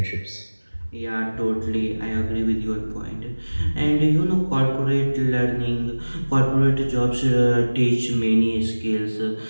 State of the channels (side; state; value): both; inverted; correlation -1.00